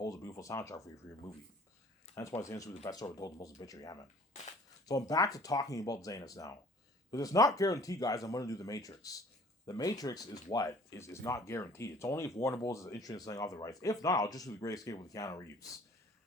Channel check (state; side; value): normal; both; correlation 0.52